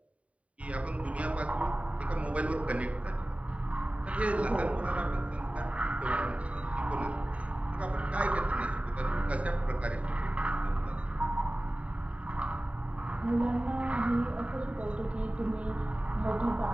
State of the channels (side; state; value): left; late; 0.065 ms